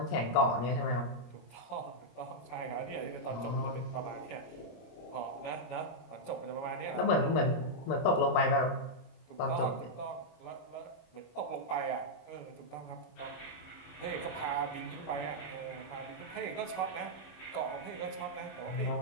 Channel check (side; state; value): right; late; 26 ms